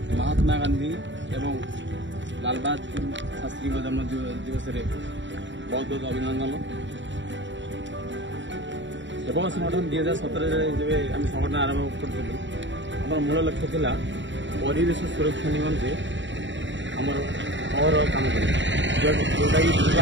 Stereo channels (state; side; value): late; left; 0.54 ms